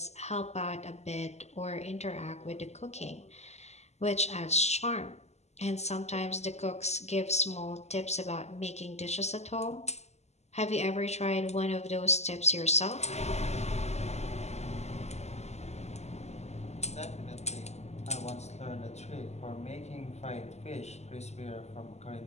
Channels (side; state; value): right; late; 0.32 ms